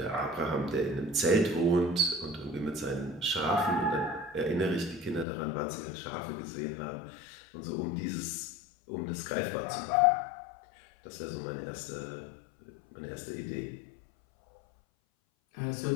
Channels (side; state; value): right; drops out; at 5.2 s